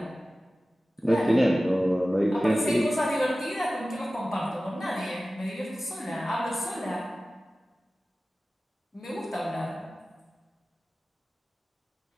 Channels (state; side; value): normal; both; correlation 0.96